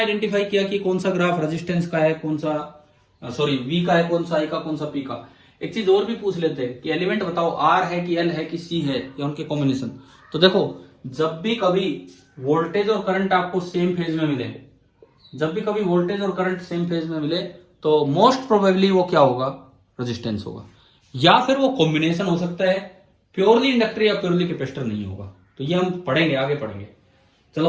किया कि कौन सा ग्राफ रेजिस्टेंस का है, कौन सा सॉरी वी का है, कौन सा आई का, कौन सा पी का। एक चीज और भी पूछ लेते हैं कि एलिमेंट बताओ आर है कि एल है कि सी है या उनके कॉम्बिनेशन। तो देखो, जब भी कभी वोल्टेज और करंट आपको सेम फेज में मिले, जब भी कभी वोल्टेज और करंट सेम फेज में मिले तो मोस्ट प्रोबेबली वो क्या होगा? रेजिस्टेंस होगा, या फिर वो कॉम्बिनेशन हो सकता है, प्योरली इंडक्टर या प्योरली कैपेसिटर नहीं होगा। तो ये हम पढ़ेंगे, आगे पढ़ेंगे। चलो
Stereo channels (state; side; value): identical; both; correlation 1.00